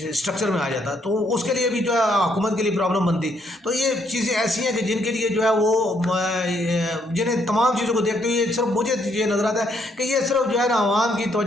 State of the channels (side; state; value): both; normal; correlation 0.72